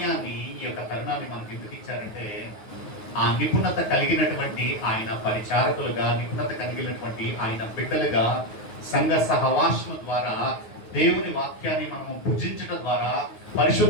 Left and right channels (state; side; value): late; right; 9.4 ms